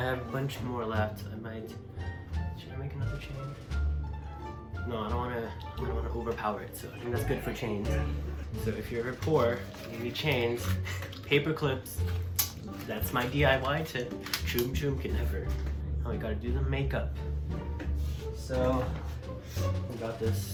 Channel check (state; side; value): identical; both; correlation 1.00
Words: have a bunch more left. Should I make another chain? No, I don't wanna overpower it, so I think that's good for chains. So if you're ever poor, you need chains, paper clips, that's my DIY tip. Choom choom can never. Now we gotta do the makeup. So, we got